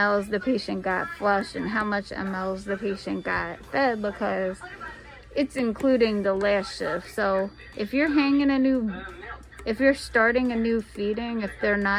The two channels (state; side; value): identical; both; correlation 1.00